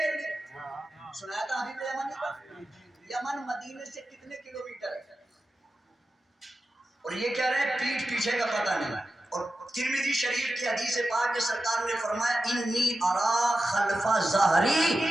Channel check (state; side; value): normal; both; correlation 0.92